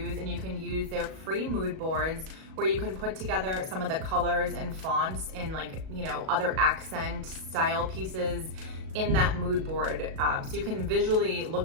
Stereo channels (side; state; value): left; late; 37 ms